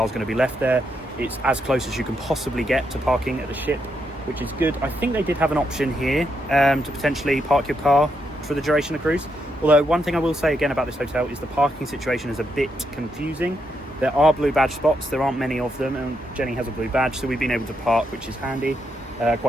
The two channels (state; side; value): normal; both; correlation 0.80